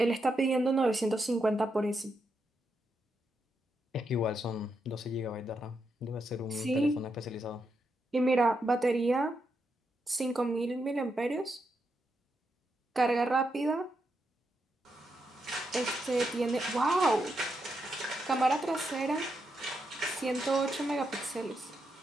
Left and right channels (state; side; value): normal; both; correlation 0.83